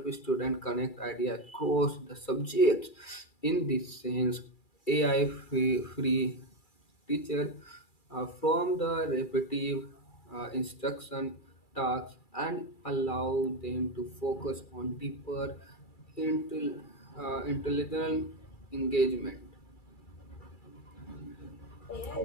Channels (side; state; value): right; late; 2.3 ms